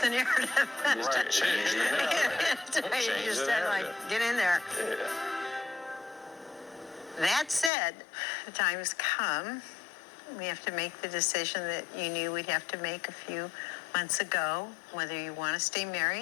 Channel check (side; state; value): right; drops out; at 7.7 s